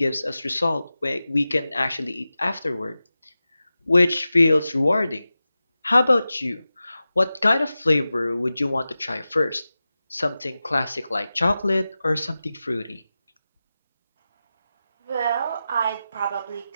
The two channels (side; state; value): both; inverted; correlation -0.94